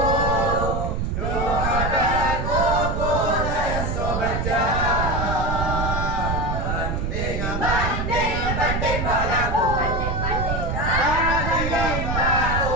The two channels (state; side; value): noise; right; rumble, 1 dB below the sound